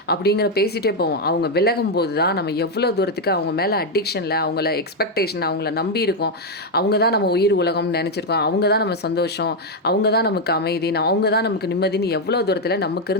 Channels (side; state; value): both; normal; correlation 0.03